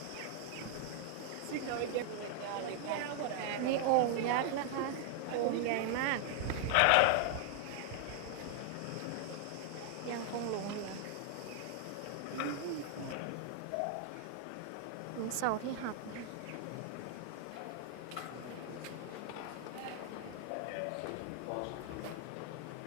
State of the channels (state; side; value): different; both; correlation 0.00